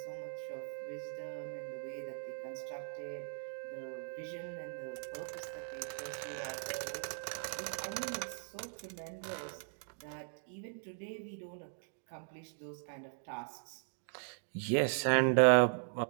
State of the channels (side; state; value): left; silent; digital silence